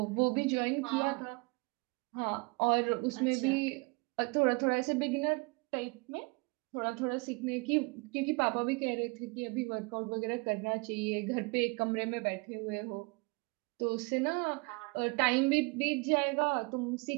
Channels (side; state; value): left; quieter; 28.4 dB